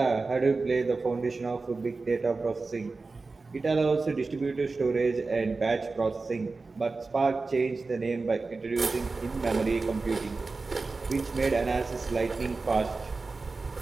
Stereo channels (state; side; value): quieter; left; 3.8 dB